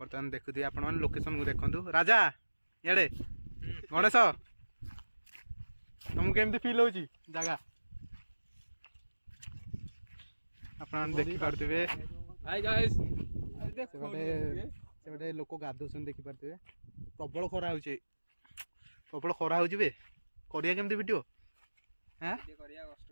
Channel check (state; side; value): inverted; both; correlation -1.00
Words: बर्तमान देखुए आपण मैंने लोकेशन को देखु राजा ये गणेश तुमको केमती फिल हो जगह आप देखिपे से लोक गाधुन देखिपे प्रबल खरा हो प्रबल खरा हो करिया केमती वीडियो हाँ